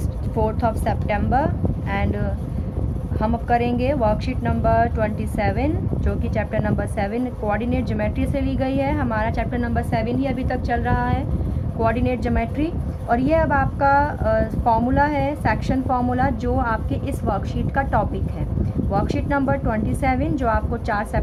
4th of September and हम अब करेंगे worksheet number 27 जो कि चैप्टर नंबर 7 कोऑर्डिनेट ज्योमेट्री से ली गई है। हमारा चैप्टर नंबर 7 ही अभी तक चल रहा है, कोऑर्डिनेट ज्योमेट्री। और ये अब आपका फार्मूला है, सेक्शन फार्मूला, जो आपके इस वर्कशीट का टॉपिक है। वर्कशीट नंबर 27 जो आपको 4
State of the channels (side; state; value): both; identical; correlation 1.00